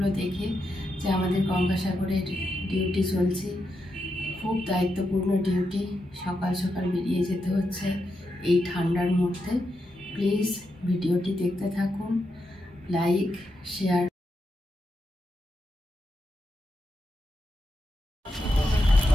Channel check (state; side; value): normal; both; correlation 0.85